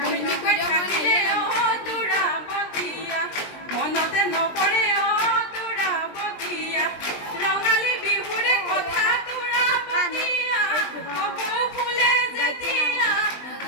থাকিলে ও তোৰা বতিয়া মনতে নপৰে ও তোৰা বতিয়া ৰঙালী বিহুৰে কথা তোৰা বতিয়া কপৌ ফুলে যেতিয়া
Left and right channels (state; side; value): late; right; 20 ms